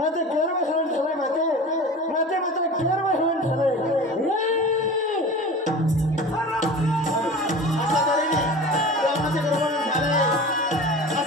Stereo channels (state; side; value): normal; both; correlation 0.35